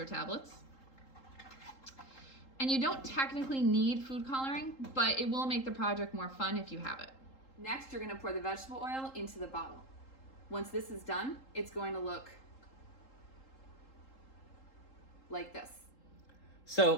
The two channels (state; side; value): late; right; 3.8 ms